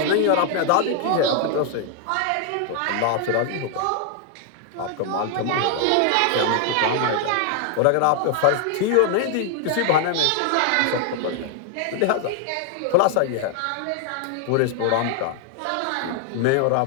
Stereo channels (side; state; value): both; different; correlation 0.00